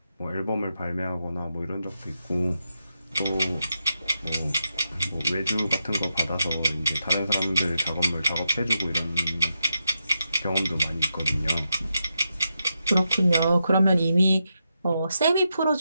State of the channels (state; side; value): inverted; both; correlation -0.86